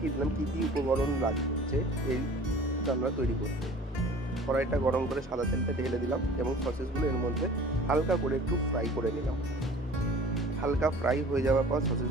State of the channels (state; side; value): normal; both; correlation 0.45